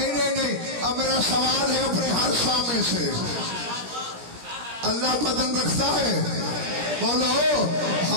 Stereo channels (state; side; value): late; left; 17 ms